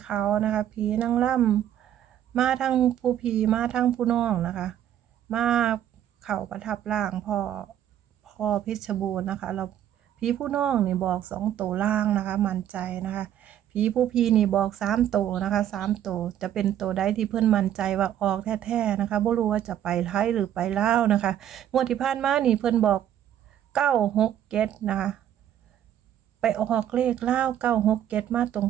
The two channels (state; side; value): quieter; left; 10.9 dB